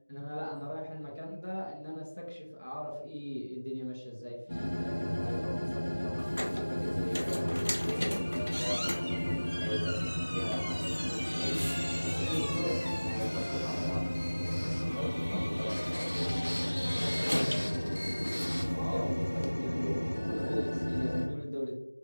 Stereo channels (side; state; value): both; inverted; correlation -1.00